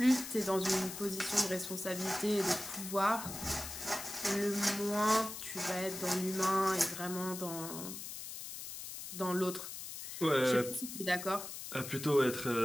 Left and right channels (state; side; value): noise; left; hiss, 9 dB below the sound